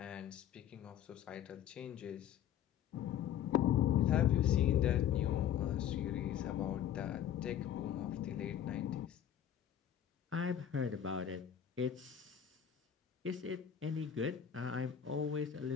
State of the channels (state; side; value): quieter; right; 9.7 dB